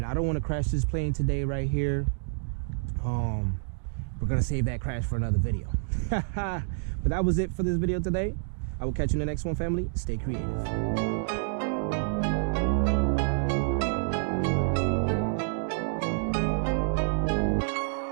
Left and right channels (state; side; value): silent; left; digital silence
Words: I don't want to crash this plane today right here. We're gonna save that crash for another video. But that was it for this video today. I will catch you in the next one, family. Stay creative.